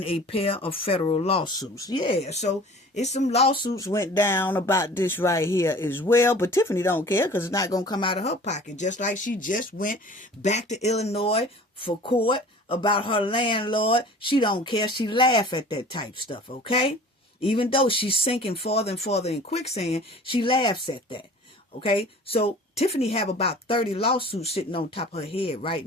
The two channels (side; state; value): both; normal; correlation 0.44